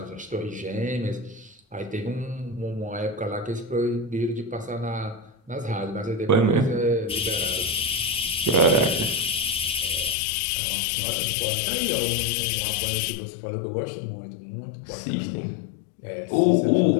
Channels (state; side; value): drops out; right; at 10.2 s